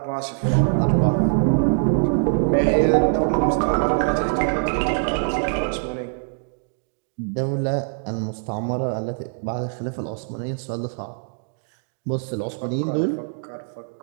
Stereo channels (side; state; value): left; silent; digital silence